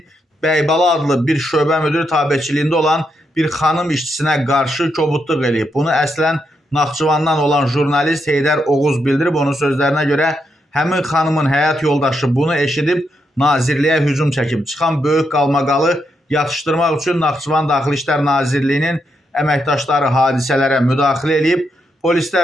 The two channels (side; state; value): both; normal; correlation 0.81